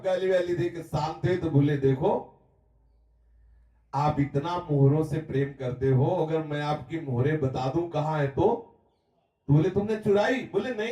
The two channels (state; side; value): identical; both; correlation 1.00